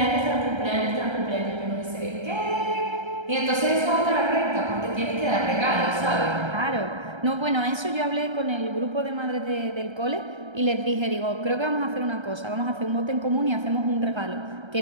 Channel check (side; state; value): left; late; 1.3 ms